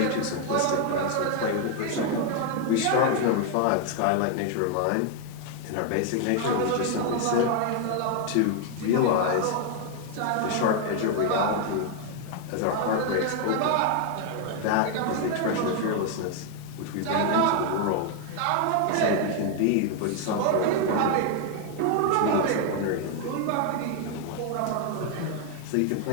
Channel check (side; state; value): both; different; correlation 0.01